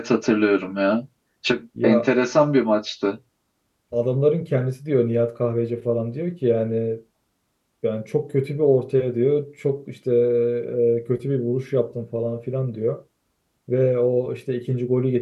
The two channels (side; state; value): both; identical; correlation 1.00